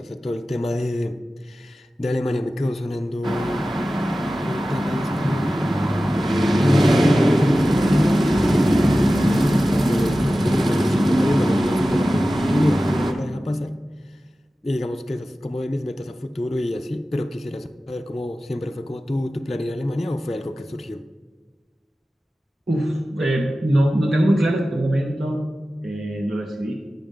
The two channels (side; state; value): both; normal; correlation 0.95